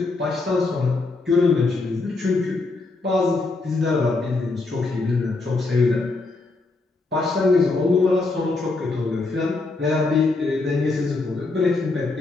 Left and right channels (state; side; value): quieter; right; 3.5 dB